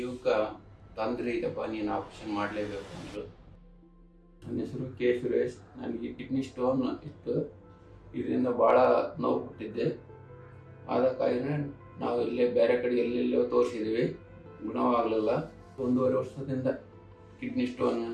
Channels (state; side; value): identical; both; correlation 1.00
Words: ತೊಂದರೆ ಇದೆಪ್ಪ, ನೀನು ಆಪ್ರೇಷನ್ ಮಾಡಲೇಬೇಕು ಅಂದರು. ನನ್ನ ಹೆಸರು ಕೆ ಸುರೇಶ್. ನನಗೆ ಕಿಡ್ನಿ ಸ್ಟೋನ್ ಇತ್ತು. ಇದರಿಂದ ಭಾಳ ನೋವು ಕೊಟ್ಟಿದ್ದೆ. ಆದ ಕಾರಣ ನಾವು ಇಲ್ಲೇ ಬೇರೆ ಕಡೆ ಎಲ್ಲೆಲ್ಲೋ ತೋರಿಸಿದ್ವಿ, ಗುಣವಾಗಲಿಲ್ಲ. 1.5 ವರ್ಷದಿಂದ ಕಿಡ್ನಿ ಸ್ಟೋನ್